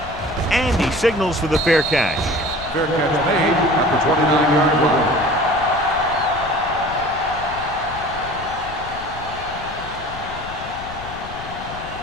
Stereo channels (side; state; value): left; noise; rumble, 14 dB below the sound